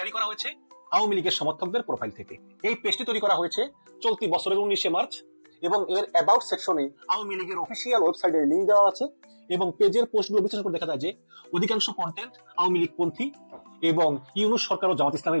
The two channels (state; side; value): inverted; both; correlation -1.00